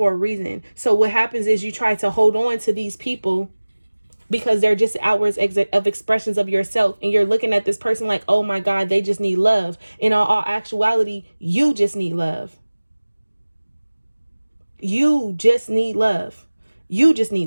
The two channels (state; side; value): inverted; both; correlation -1.00